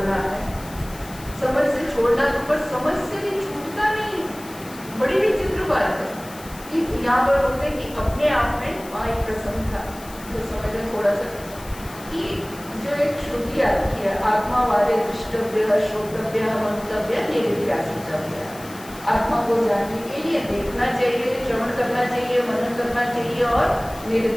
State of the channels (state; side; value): noise; left; hiss, 18 dB below the sound